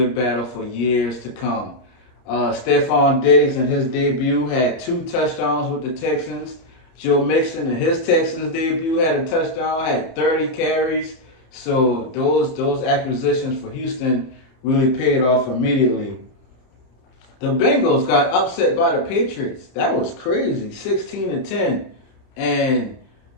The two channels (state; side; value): late; right; 31 ms